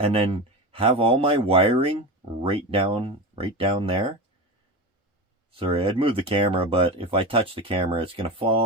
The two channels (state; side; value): normal; both; correlation 0.25